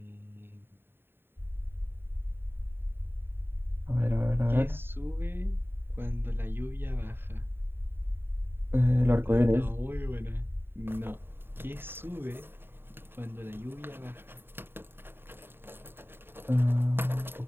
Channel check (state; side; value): late; left; 0.11 ms